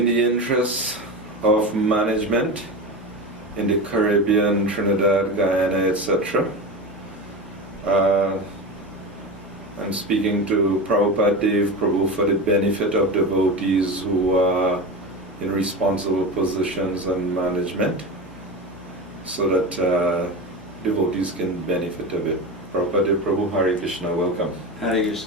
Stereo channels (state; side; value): normal; both; correlation 0.24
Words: the interest of management in the Caribbean, Trinidad, Guyana, etc., I'm speaking to Prabhupadadeva Prabhu for the benefit of devotees who are in responsible positions and management, so that devotees can benefit a bit. Prabhupadadeva Prabhu, Hare Krishna, welcome. Hare